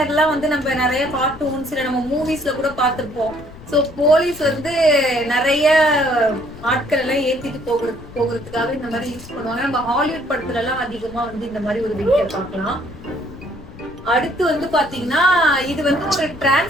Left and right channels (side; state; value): left; noise; rumble, 17 dB below the sound